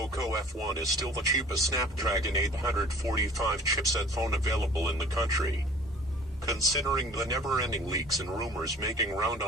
F1 is still the cheapest Snapdragon 845 chipset phone available in the country. Considering the never-ending leaks and rumors making round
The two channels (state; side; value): normal; both; correlation 0.48